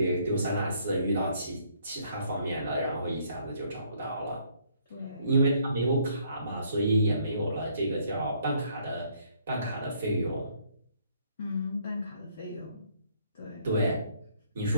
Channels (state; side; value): inverted; both; correlation -0.66